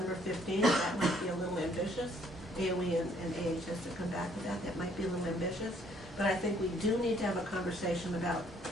15th. That might be a little ambitious. AOE and AHS to come back with that. That might be a little ambitious. But I think we do need to have a conversation about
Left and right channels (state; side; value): normal; both; correlation 0.64